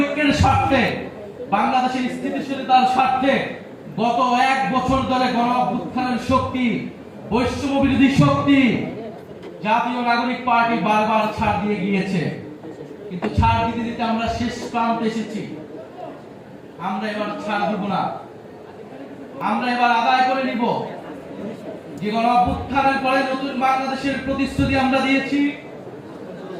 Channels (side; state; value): both; identical; correlation 1.00